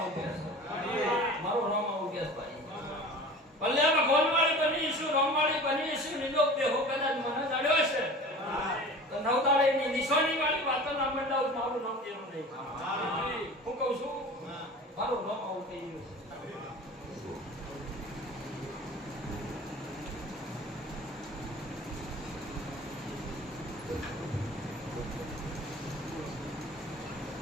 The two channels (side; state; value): both; normal; correlation 0.39